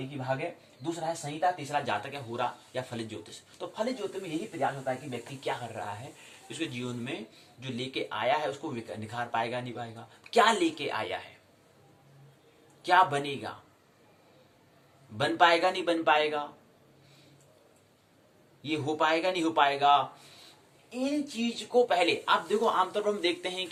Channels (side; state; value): both; identical; correlation 1.00